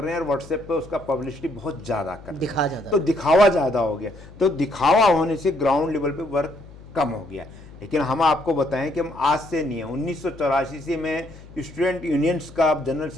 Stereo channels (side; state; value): left; noise; hum, 19 dB below the sound